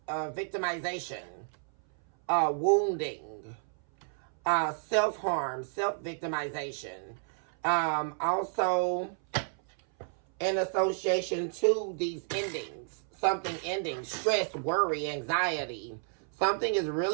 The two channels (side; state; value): left; silent; 57 dB below the other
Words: victimization, wounding, self-harm, self-victimization. Also, in association to these endings, something ending, stress, worry, anxiety. Something is